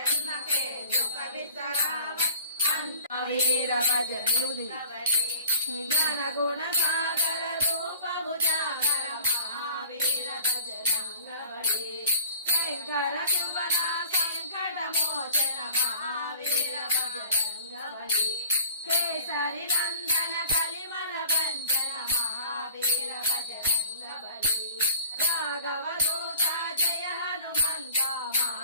के दुख बिसरावे अंत वीर भजन ज्ञान गुण सागर रूप उजागर महावीर बजरंग बली शंकर शिवना संकट मोचन महावीर बजरंग बली केसरी नंदन कलिमल बंधन महावीर बजरंग बली राघव दूता जय हनुमंत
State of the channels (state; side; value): inverted; both; correlation -0.45